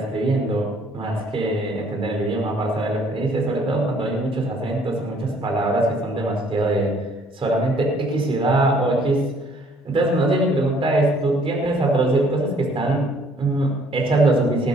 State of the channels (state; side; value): normal; both; correlation 0.61